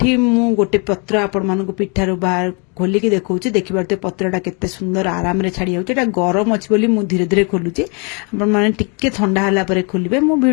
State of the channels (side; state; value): right; quieter; 33.8 dB